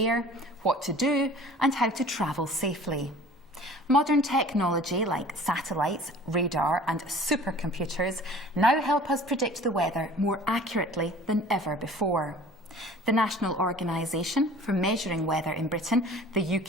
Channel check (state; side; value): normal; both; correlation 0.46